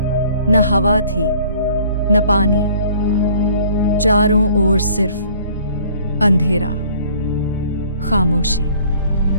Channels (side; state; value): both; inverted; correlation -0.54